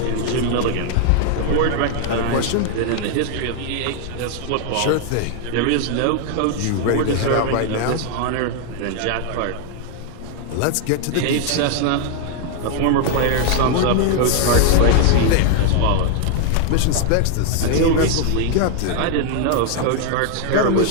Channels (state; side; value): different; both; correlation 0.00